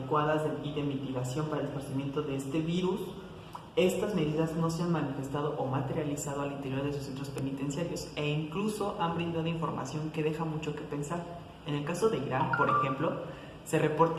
y de mitigación para el esparcimiento de este virus, estas medidas no se han manifestado o materializado al interior de sus centros penitenciarios e incluso han brindado información que deja mucho que pensar. En el caso de Irán, por ejemplo, se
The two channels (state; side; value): identical; both; correlation 1.00